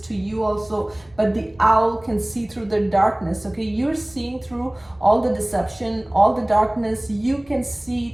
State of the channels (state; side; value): noise; right; hum, 29 dB below the sound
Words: to you also, but the owl can see through the darkness, okay? You're seeing through all the deception, all the darkness. You can